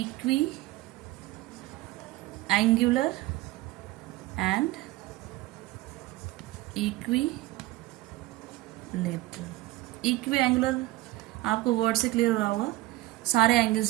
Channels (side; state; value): left; quieter; 18.5 dB